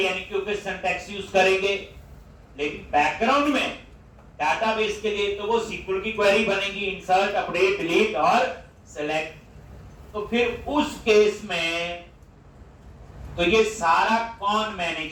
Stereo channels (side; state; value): both; identical; correlation 1.00